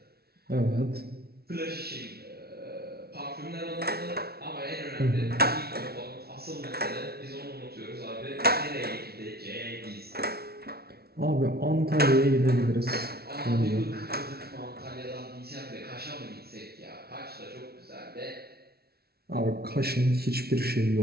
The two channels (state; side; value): late; left; 0.45 ms